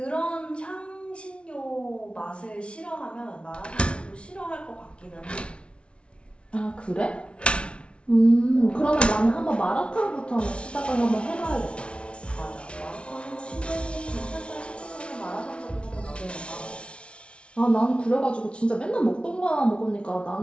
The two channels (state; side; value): late; right; 0.059 ms